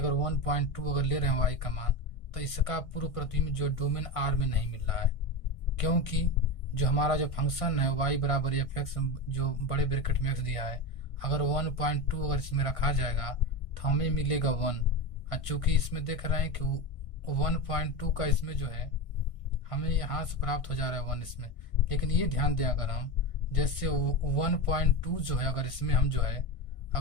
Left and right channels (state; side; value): late; right; 1.6 ms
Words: 1.2 अगर ले रहे हैं वाई का मान, तो इसका पूर्व प्रतिबिंब जो डोमेन आर में नहीं मिल रहा है, क्योंकि जो हमारा जो फंक्शन है वाई बराबर एफ एक्स जो बड़े ब्रैकेट में एक्स दिया है, अगर 1.2 अगर इसमें रखा जाएगा तो हमें मिलेगा 1। चूंकि इसमें देख रहे हैं कि 1.2 का इसमें जो है हमें यहाँ से प्राप्त हो जा रहा है 1 इसमें। लेकिन ये ध्यान दें, अगर हम जैसे 1.2 जो है अगर इसमें हम जो है